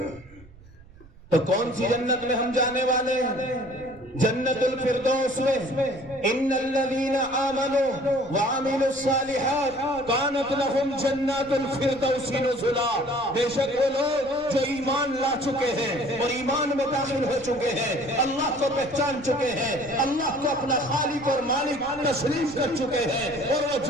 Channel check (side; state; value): right; noise; rumble, 23 dB below the sound